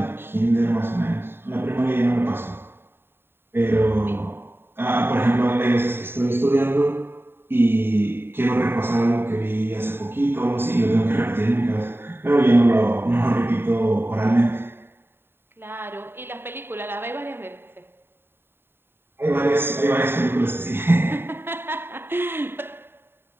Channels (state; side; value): late; left; 0.11 ms